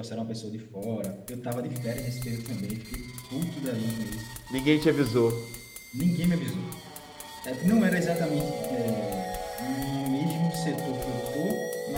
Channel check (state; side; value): identical; both; correlation 1.00